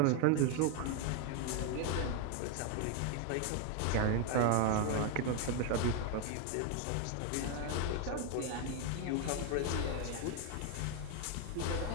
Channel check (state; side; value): different; both; correlation 0.01